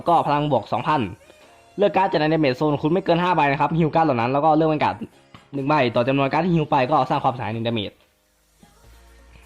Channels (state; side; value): identical; both; correlation 1.00